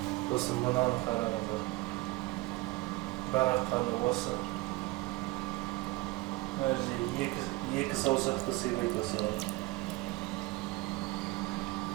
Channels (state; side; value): quieter; left; 21.3 dB